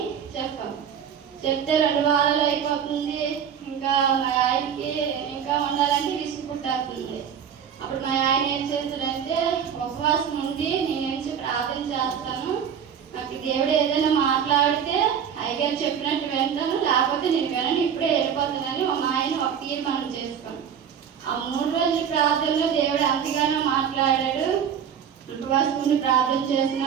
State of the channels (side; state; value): left; quieter; 8.1 dB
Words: చెప్పాము. చెప్తే 2 వారాలు అయిపోతుంది. ఇంకా మా ఆయనకి ఇంకా ఉండాలంటే విసుగు పుట్టేస్తుంది. అప్పుడు మా ఆయన ఏం చేస్తాడంటే ఉపవాసం ఉండి నేను ప్రార్థన చేస్తాను, నాకు దేవుడు ఏదైనా మాట్లాడితే అయ్యగారు చెప్పినట్టు వింటాను, లేకపోతే నేను వినను, ఇప్పుడే వెళ్ళిపోతానని మా ఆయన ఒక తీర్మానం చేసుకున్నాను. ఆ 3 రోజుల ప్రార్థనలో దేవుడు అంతగానో మాట్లాడాడు. ఉపవాసం ఉండి ప్రార్థన